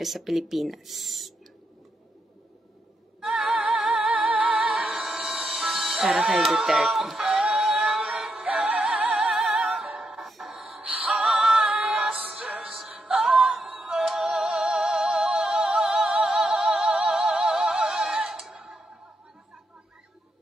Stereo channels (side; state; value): both; normal; correlation 0.82